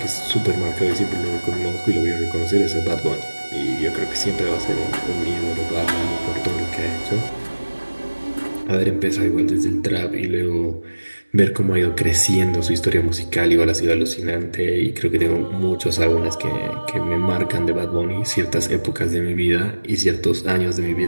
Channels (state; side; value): inverted; both; correlation -1.00